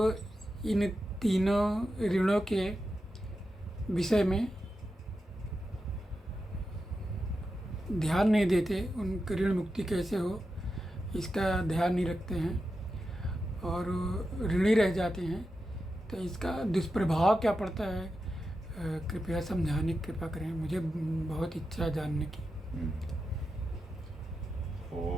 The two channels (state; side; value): normal; both; correlation 0.89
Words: इन तीनों ऋणों के विषय में ध्यान नहीं देते, उनकी ऋण मुक्ति कैसे हो, इसका ध्यान नहीं रखते हैं और ऋणी रह जाते हैं, तो इसका दुष्प्रभाव क्या पड़ता है? कृपया समझाने की कृपा करें, मुझे बहुत इच्छा है जानने की।